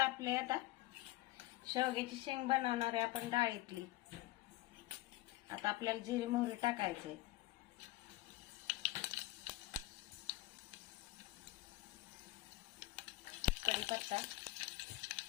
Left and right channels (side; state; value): right; quieter; 18.0 dB